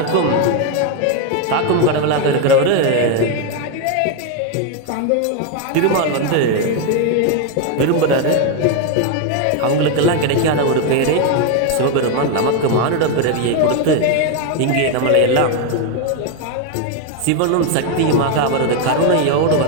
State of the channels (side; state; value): both; different; correlation 0.01